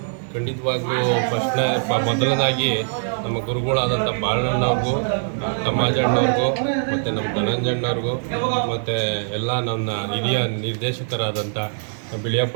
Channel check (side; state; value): left; silent; 56 dB below the other